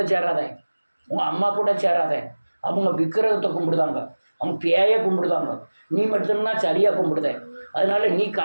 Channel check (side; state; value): both; inverted; correlation -1.00